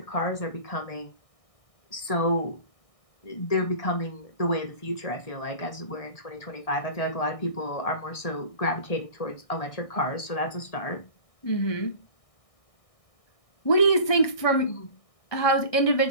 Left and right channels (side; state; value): right; late; 1.6 ms